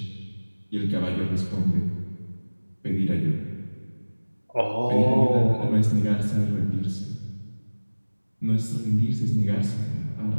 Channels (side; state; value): both; inverted; correlation -1.00